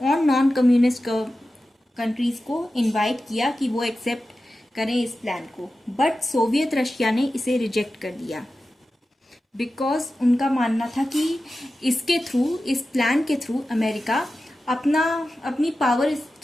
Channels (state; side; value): normal; both; correlation 0.93